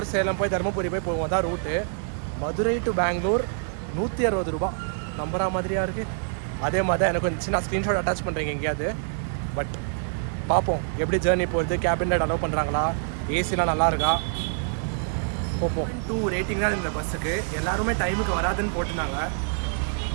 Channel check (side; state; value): left; silent; 59 dB below the other